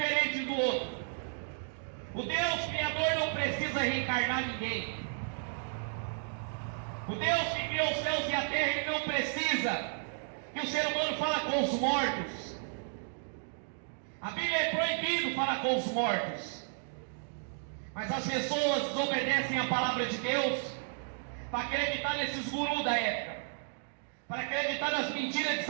do outro. O Deus Criador não precisa reencarnar ninguém. O Deus que criou os céus e a terra, ele não precisa que o ser humano fale com os mortos. A Bíblia é proibido falar com os mortos. Mas as pessoas desobedecem a palavra de Deus para acreditar nesses gurus da época, para acreditar nas mentiras de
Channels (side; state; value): left; silent; digital silence